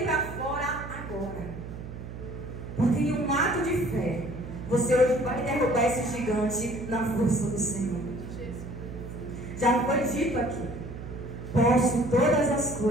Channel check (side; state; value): right; noise; hum, 11 dB below the sound